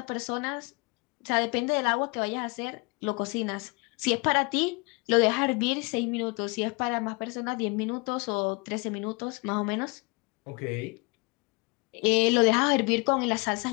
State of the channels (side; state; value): right; quieter; 28.7 dB